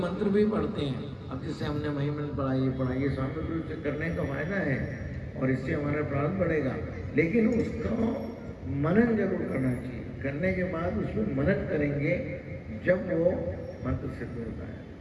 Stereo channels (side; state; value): both; identical; correlation 1.00